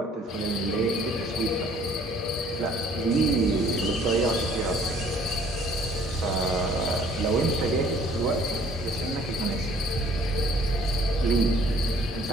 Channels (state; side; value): normal; both; correlation 0.58